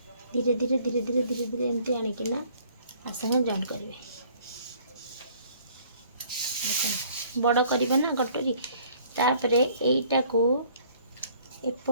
धीरे धीरे धीरे धीरे धीरे धीरे एमती आणिकिना आसने जॉइंट करेंगे बड़ करवा ना कटोरी तापर यहीटा को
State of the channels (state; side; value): inverted; both; correlation -0.57